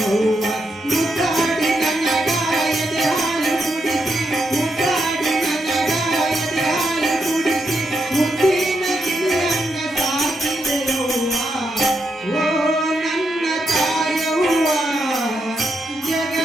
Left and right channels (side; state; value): both; normal; correlation 0.82